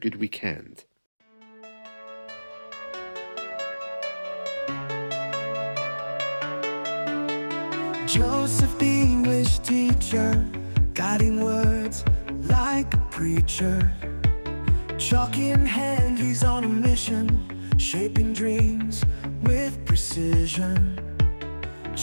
weekend. Joseph, the English teacher, guiding words like a preacher. Chalk in hand, he's on a mission, shaping dreams with precision.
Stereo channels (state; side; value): inverted; both; correlation -1.00